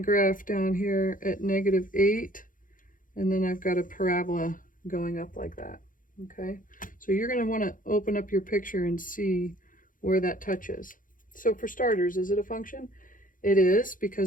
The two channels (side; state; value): right; late; 0.39 ms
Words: down here at -8, and then I've got a parabola going up like that. Okay, so you're going to want to open up your picture and see where that touches. So for starters, is it a function? It is,